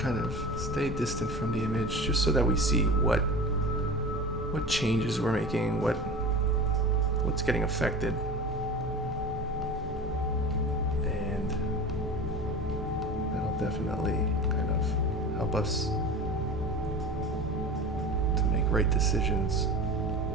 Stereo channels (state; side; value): normal; both; correlation 0.34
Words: kind of stay distant from the image, just so that we see what changes we're making, what's getting affected, and that'll definitely kind of help us to make right decisions